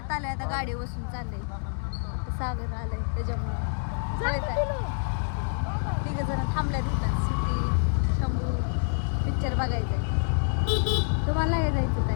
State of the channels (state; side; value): silent; right; digital silence